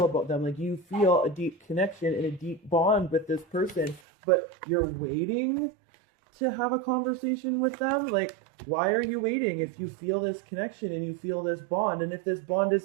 about them. Like, you feel a deep connection and a deep bond with this person, but you're waiting to have a conversation with them. Like, why are you waiting if you feel this connection and you feel this bond? And if this bond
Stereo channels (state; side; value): drops out; left; at 4.0 s